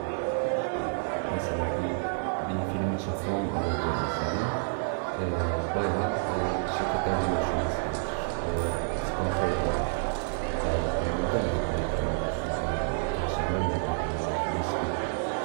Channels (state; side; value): silent; left; 59 dB below the other